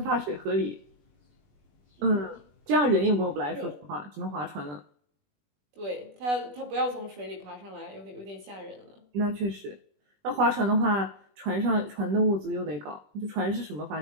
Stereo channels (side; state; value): left; late; 20 ms